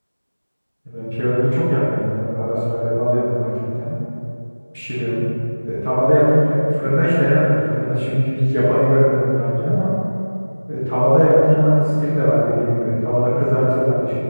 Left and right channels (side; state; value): both; inverted; correlation -1.00